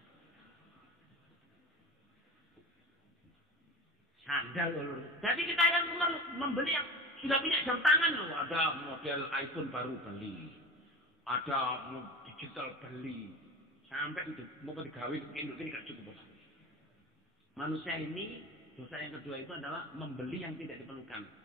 Sandal loh. Jadi kita yang membeli yang sudah punya jam tangan loh. Ada model iPhone baru beli. Ada digital beli. Sampai mau digawe induk ini gak cukup. Manusia ini dosa yang kedua itu adalah membeli yang tidak diperlukan.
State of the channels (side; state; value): both; normal; correlation 0.32